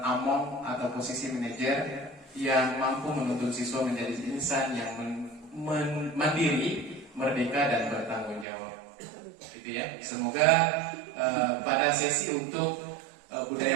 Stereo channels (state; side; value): drops out; left; at 8.5 s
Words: among atau posisi manajer yang mampu menuntun siswa menjadi insan yang mandiri, merdeka dan bertanggung jawab. Gitu ya. Semoga pada sesi untuk